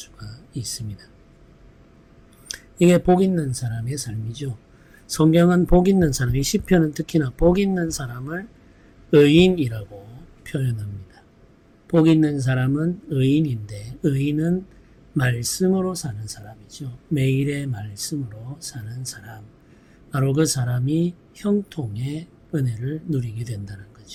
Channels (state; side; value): identical; both; correlation 1.00